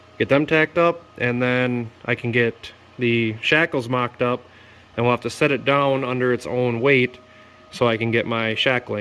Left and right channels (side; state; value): both; identical; correlation 1.00